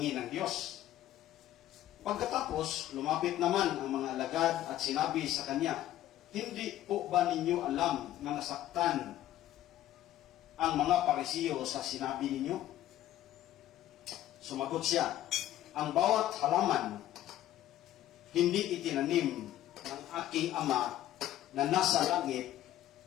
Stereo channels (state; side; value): quieter; right; 13.2 dB